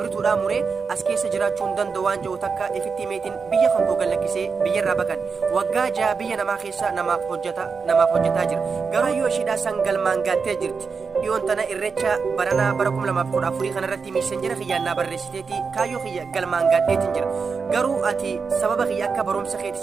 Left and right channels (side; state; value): left; quieter; 5.2 dB